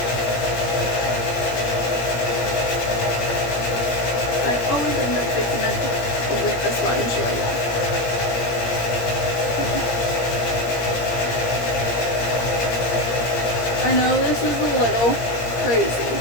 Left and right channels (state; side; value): late; right; 17 ms